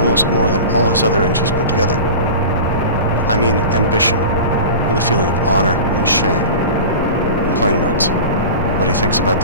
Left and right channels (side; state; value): both; inverted; correlation -0.32